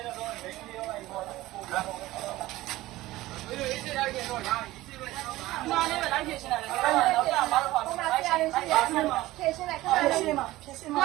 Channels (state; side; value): quieter; left; 17.4 dB